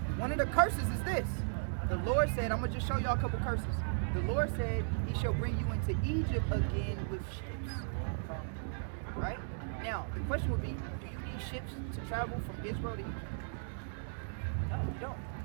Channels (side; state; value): left; silent; digital silence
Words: one of the curses is this. The Lord said, I'm going to just show y'all a couple curses. The Lord said he shall bring you into Egypt again with ships. Right? Now, the question would be, do you need ships to travel from Israel to Egypt? No, you don't.